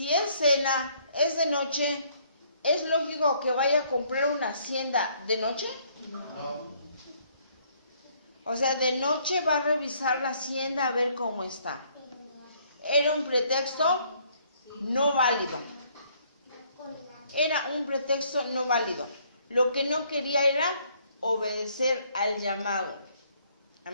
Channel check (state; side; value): inverted; both; correlation -0.65